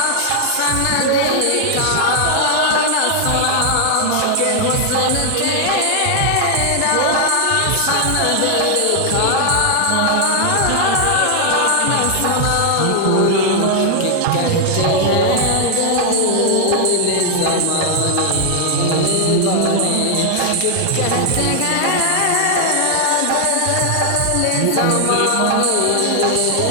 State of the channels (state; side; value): different; both; correlation 0.00